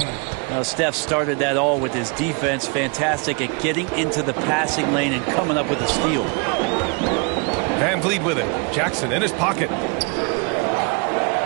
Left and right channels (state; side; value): quieter; left; 33.5 dB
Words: Well, Steph started that all with his defense. Fantastic at getting into the passing lane and coming up with a steal. Van Vliet with it. Jackson in his pocket.